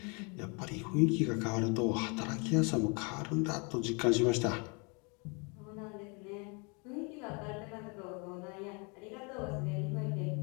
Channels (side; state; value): right; quieter; 32.8 dB